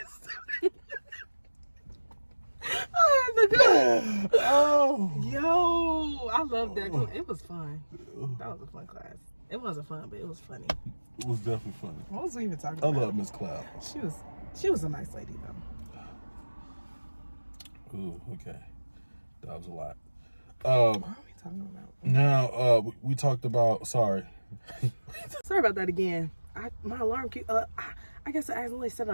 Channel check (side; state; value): both; inverted; correlation -1.00